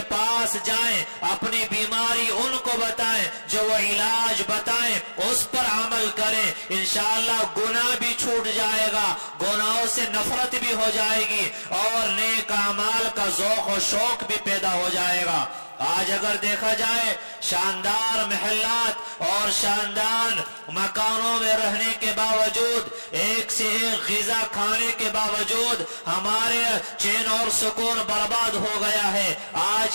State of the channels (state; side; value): inverted; both; correlation -1.00